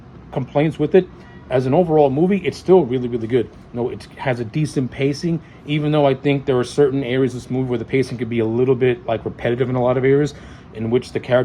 complaints with it, as an overall movie, it's still really, really good. It has a decent pacing, even though I think there are certain areas of this movie where the pacing could be a little bit like repetitive in a lot of areas, in which the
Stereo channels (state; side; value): identical; both; correlation 1.00